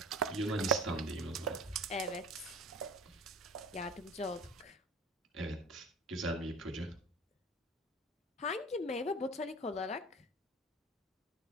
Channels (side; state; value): both; normal; correlation 0.38